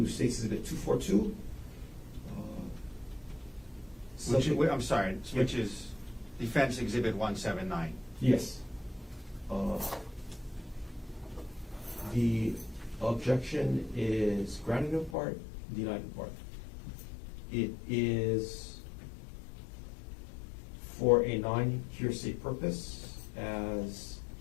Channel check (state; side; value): drops out; right; at 15.2 s